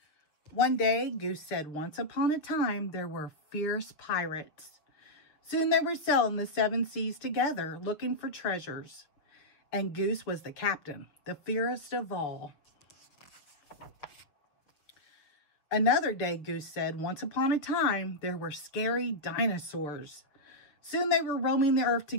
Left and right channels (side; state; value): right; late; 6.7 ms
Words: One day, Goose said, "Once upon a time, there were fierce pirates. Soon they were sailing the 7 seas together, looking for treasures. And Goose was the captain, the fiercest of all." Another day, Goose said, "Once upon a time, there were scary dinosaurs. Soon they were roaming the earth